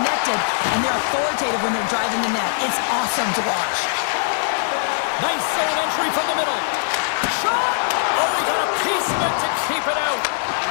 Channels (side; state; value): right; silent; digital silence